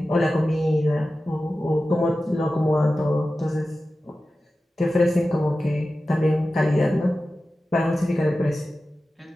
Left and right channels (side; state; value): both; normal; correlation 0.94